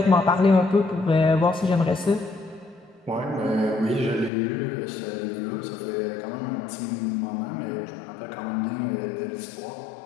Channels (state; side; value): drops out; right; at 4.3 s